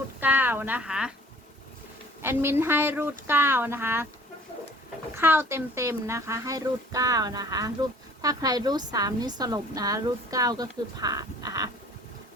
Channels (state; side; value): normal; both; correlation 0.51